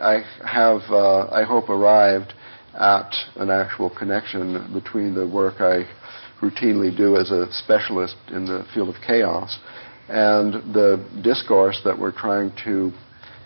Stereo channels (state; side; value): inverted; both; correlation -1.00